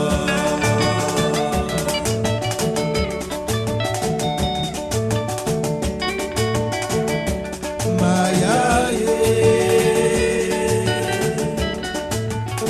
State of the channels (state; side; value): identical; both; correlation 1.00